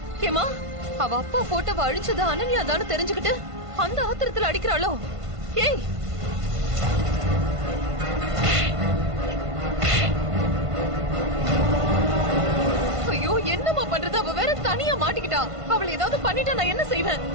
ஏமா, அவ அப்பா போட்டோவை அழிச்சது அனன்யா தானே தெரிஞ்சுக்கிட்டு அந்த ஆத்திரத்துல அடிக்கிறாளோ? ஏய், ஐயோ, என்னமா பண்றது? அவ வேற தனியா மாட்டிக்கிட்டா. அவளை ஏதாவது பண்ணிட்டா நான் என்ன செய்வேன்?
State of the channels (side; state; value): left; late; 1.5 ms